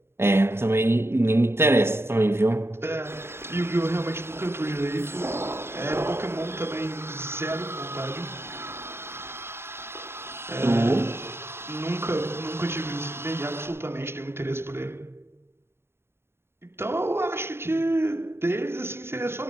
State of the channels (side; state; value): left; late; 0.12 ms